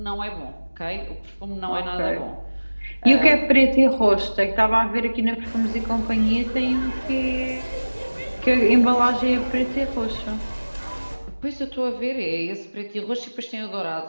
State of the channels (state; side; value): inverted; both; correlation -1.00